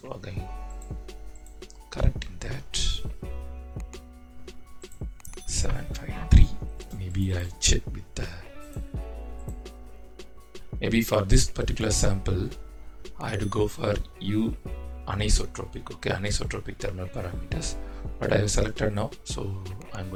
again correcting that. 753. Maybe I'll check with maybe for this particular sample I had to go for U anisotropic, okay, anisotropic thermal parameters, but I have selected now, so I'm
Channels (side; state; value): both; identical; correlation 1.00